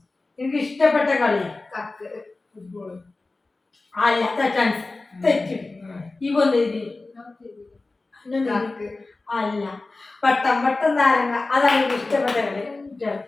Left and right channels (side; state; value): right; quieter; 3.4 dB